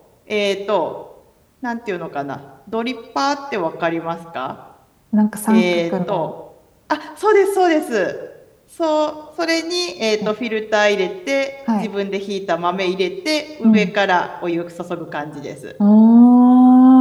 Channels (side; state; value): both; identical; correlation 1.00